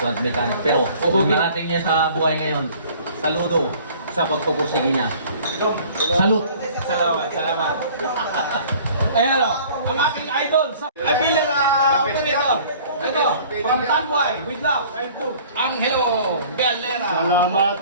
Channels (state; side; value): inverted; both; correlation -0.50